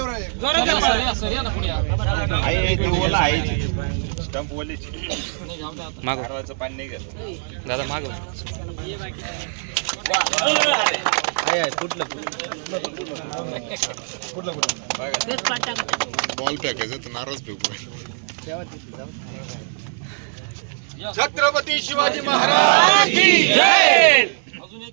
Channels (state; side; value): silent; left; 64 dB below the other